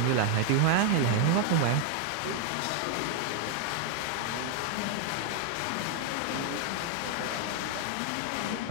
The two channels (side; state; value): both; different; correlation 0.00